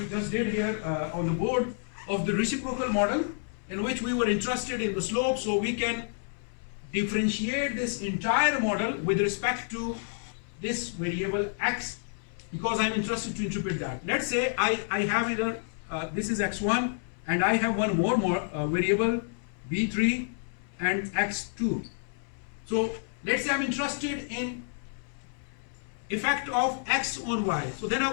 just did here on the board of the reciprocal model, in which we were interested in the slope, so we can differentiate this entire model with respect to this variable x, because I'm interested to interpret that. Let's say I have either, this is x1, and I have one more variable, b3 and x2. So let's say I'm interested in effect of x on y. So then I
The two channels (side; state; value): right; silent; 58 dB below the other